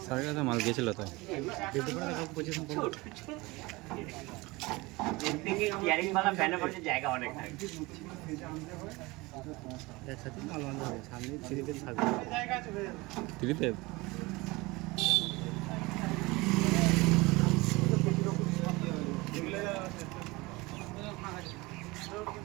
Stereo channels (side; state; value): left; quieter; 22.8 dB